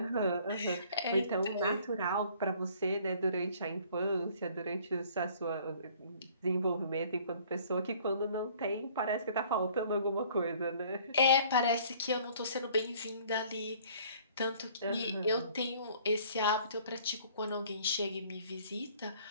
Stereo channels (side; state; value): both; inverted; correlation -0.55